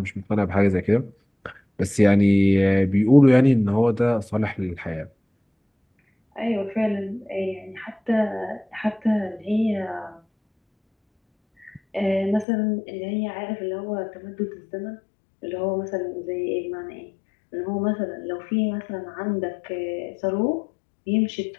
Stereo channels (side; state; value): right; drops out; at 12.5 s